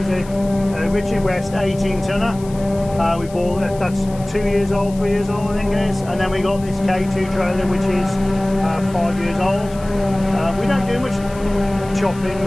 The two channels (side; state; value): left; noise; hiss, 21 dB below the sound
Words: a Richard West 18 tonner. We bought that's 2 years old, 3 years old I think it is. And then we got this K2 trailer which is 5 years old. We don't do much chopping